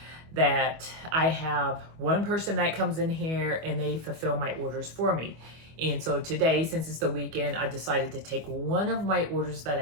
that I have one person that comes in here and they fulfill my orders for me. And so today, since it's the weekend, I decided to take one of my orders that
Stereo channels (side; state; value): left; late; 25 ms